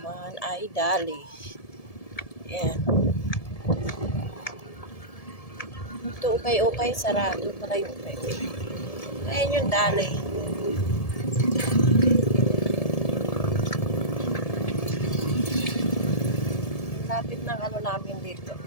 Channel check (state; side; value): late; right; 1.7 ms